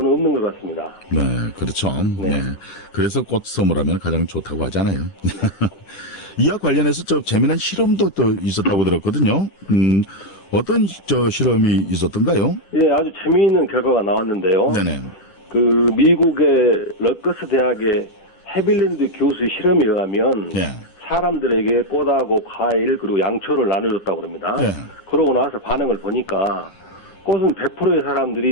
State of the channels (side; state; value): right; late; 10 ms